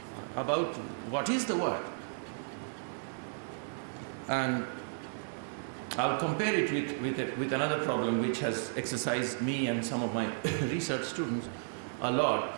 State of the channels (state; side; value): silent; left; digital silence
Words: about what is the word. And I'll compare it with another problem which has exercised me and some of my research students a